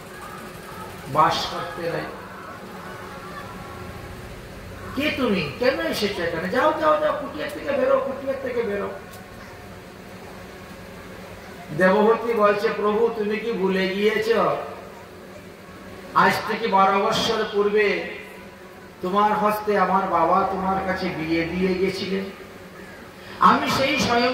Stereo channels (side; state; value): both; identical; correlation 1.00